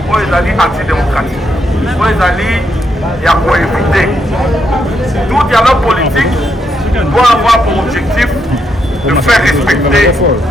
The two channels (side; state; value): both; normal; correlation 0.79